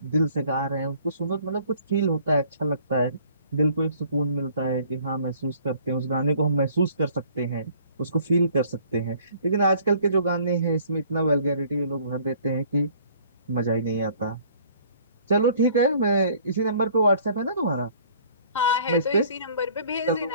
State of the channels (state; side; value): inverted; both; correlation -0.55